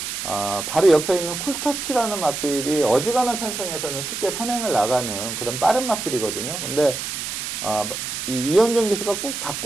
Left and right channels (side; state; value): right; noise; hiss, 5 dB below the sound